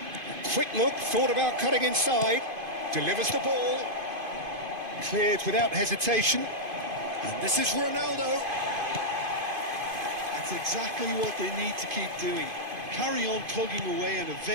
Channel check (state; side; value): late; left; 2.5 ms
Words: Quick look, thought about cutting inside, delivers the ball, cleared without hesitation, and this is Ronaldo. That's exactly what they need to keep doing. Carry on plugging away and